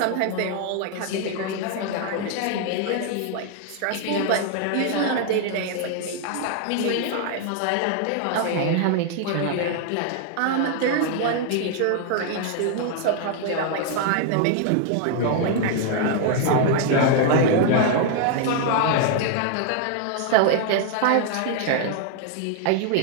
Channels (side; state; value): both; different; correlation 0.00